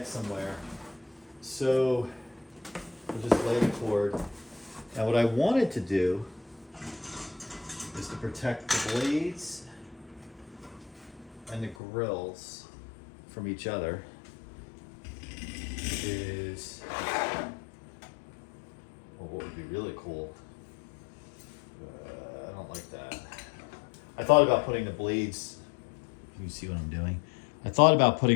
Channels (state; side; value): drops out; right; at 11.8 s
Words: somewhere. So, we'll just lay the cord. Now what I wanted to do is to protect the blades and the grills from each other is, well, what would be really cool, I don't like that. I thought about putting the blades, can you see what I'm doing? I thought about